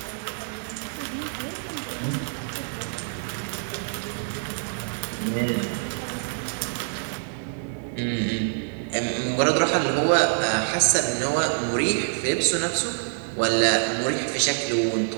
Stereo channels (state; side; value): silent; left; 61 dB below the other